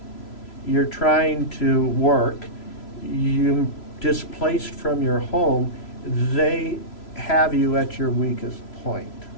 you're trying to work, you're displaced from your home, they have you at your weakest point.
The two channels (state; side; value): late; right; 3.0 ms